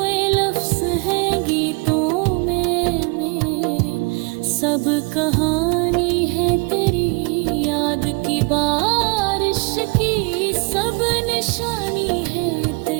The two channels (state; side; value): quieter; left; 31.3 dB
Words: लफ्ज हैं गीतों में मेरे, सब कहानी है तेरी याद की बारिश की। सब निशानी है